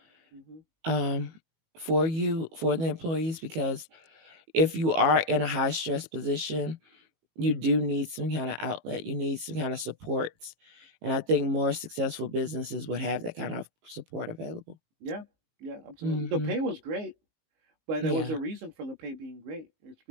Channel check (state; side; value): late; left; 19 ms